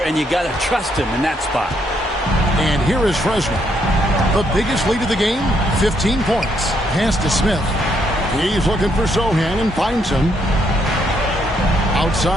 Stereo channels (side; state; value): both; normal; correlation 0.73